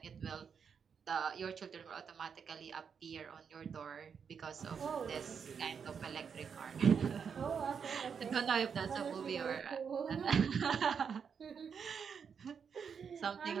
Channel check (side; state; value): left; quieter; 6.7 dB